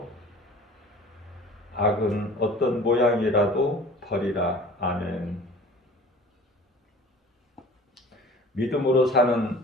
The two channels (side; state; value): both; normal; correlation 0.43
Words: 악은 어떤 모양이라도 버리라. 아멘. 믿음으로